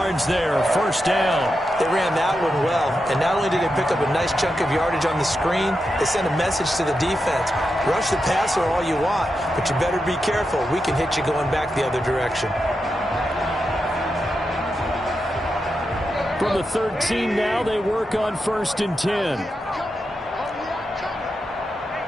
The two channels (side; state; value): both; normal; correlation 0.87